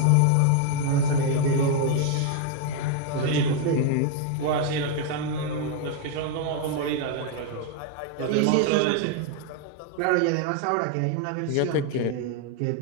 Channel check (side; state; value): both; different; correlation 0.00